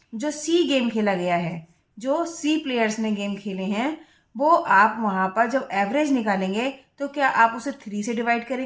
सी गेम खेला गया है, जो सी प्लेयर्स ने गेम खेले हैं, वो आप वहाँ पर जब एवरेज निकालेंगे तो क्या आप उसे 3 से डिवाइड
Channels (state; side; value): identical; both; correlation 1.00